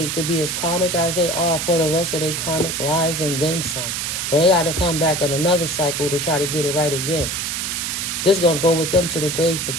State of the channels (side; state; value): right; noise; hiss, 2 dB below the sound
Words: to be as karmic as they are for the rest of their karmic lives and then some. So they got to come back in another cycle to try to get it right again. This going to go with them to the grave